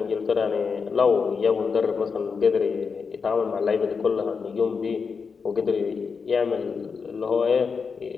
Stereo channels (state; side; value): quieter; right; 5.4 dB